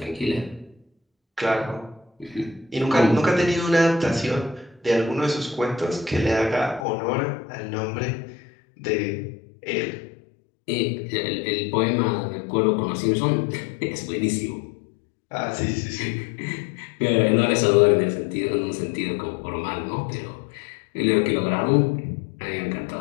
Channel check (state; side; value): drops out; right; at 6.9 s